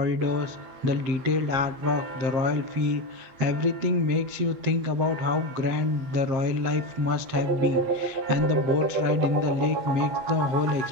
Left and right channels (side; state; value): left; late; 7.6 ms